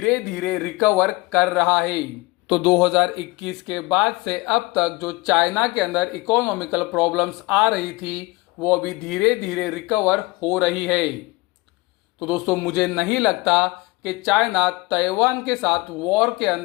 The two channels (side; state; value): right; quieter; 22.8 dB